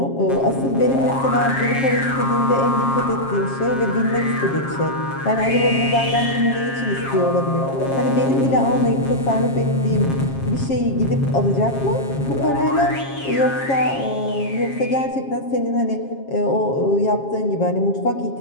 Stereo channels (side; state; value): right; late; 7.4 ms